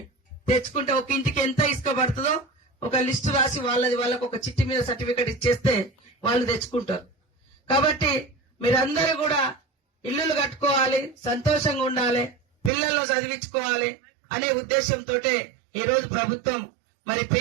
తెచ్చుకుంటే ఒక ఇంటికి ఎంత ఇసుక పడుతుందో ఒక లిస్టు రాసి వాళ్ళకు ఒక చిట్టి మీద సర్టిఫికెట్ ఇచ్చేస్తే వాళ్ళు తెచ్చుకుంటారు. కాబట్టి మీరందరూ కూడా ఇల్లులు కట్టుకోవాలి, సంతోషంగా ఉండాలి, పిల్లలను చదివించుకోవాలి అనే ఉద్దేశంతో ఈ రోజు ప్రభుత్వం మరి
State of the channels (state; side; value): drops out; left; at 12.7 s